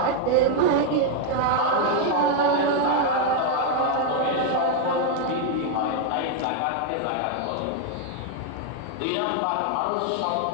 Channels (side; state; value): both; different; correlation 0.00